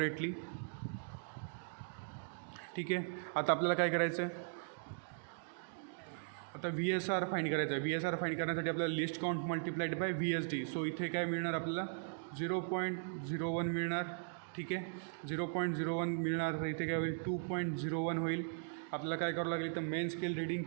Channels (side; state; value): left; silent; digital silence